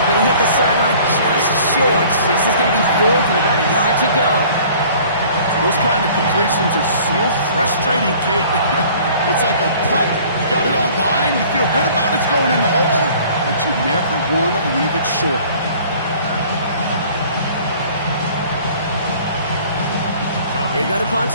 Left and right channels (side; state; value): both; inverted; correlation -0.51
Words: but he hit the sideline just short. This is going to be 4th and about a yard to go. Those kind of completions are so frustrating, Kate. It's like a putt. You got it on line, you feel good about it's going in the hole, but you never want to leave it short. They go to punt